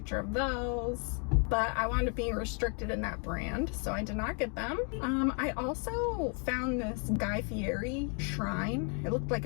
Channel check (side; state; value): right; quieter; 38.8 dB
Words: of those, but I wound up being restricted in that brand, so I did not get them. I also found this Guy Fieri shrine. It looked like